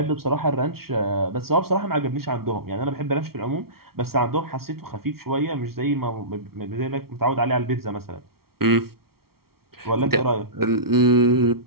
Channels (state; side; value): late; left; 0.94 ms